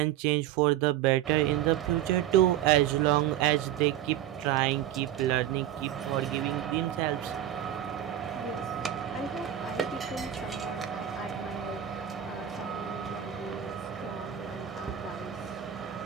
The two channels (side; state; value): left; quieter; 11.6 dB